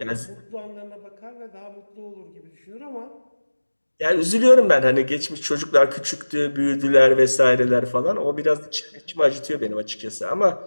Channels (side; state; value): both; inverted; correlation -1.00